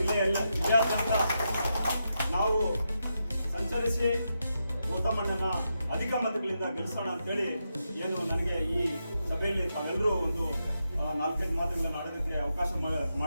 ನಾವು ಸಂಚರಿಸಿ ಗೌತಮಣ್ಣನ ಅಧಿಕ ಮತಗಳಿಂದ ಗೆಲ್ಲಿಸೋಣ ಅಂತೇಳಿ ಏನು ನನಗೆ ಈ ಸಭೆಯಲ್ಲಿ ತಾವೆಲ್ಲರೂ ಒಂದು 4-5 ಮಾತುಗಳನ್ನು ಆಡೋದಕ್ಕೆ ಅವಕಾಶ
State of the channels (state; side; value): inverted; both; correlation -0.85